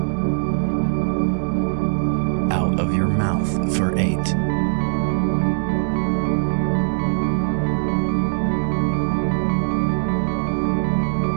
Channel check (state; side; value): silent; left; 65 dB below the other